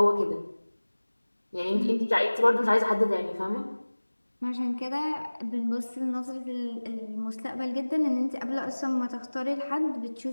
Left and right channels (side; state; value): both; inverted; correlation -1.00